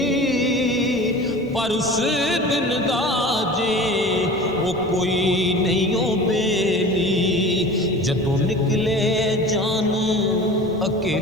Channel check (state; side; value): normal; both; correlation 0.38